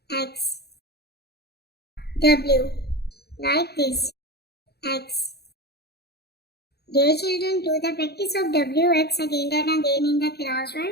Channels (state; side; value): late; right; 0.47 ms